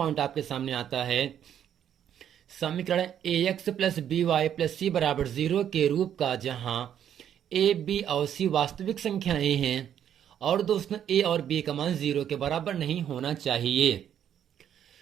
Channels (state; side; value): quieter; left; 9.7 dB